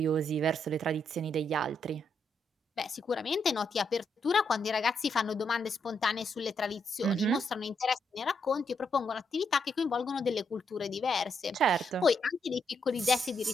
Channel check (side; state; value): both; normal; correlation 0.78